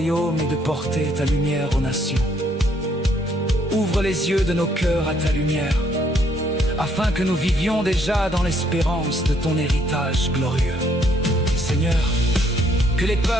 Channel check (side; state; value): both; normal; correlation 0.68